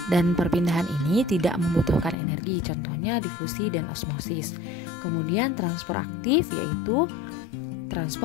Dan perpindahan ini tidak membutuhkan energi, contohnya difusi dan osmosis. Kemudian transfer aktif yaitu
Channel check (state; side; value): drops out; right; at 2.1 s